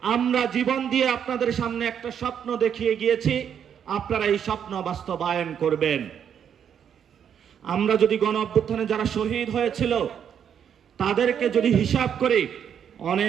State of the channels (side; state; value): left; quieter; 8.4 dB